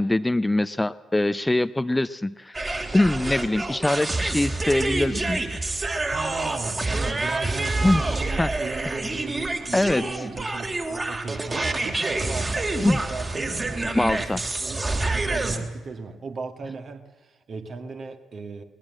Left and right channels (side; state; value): both; normal; correlation 0.95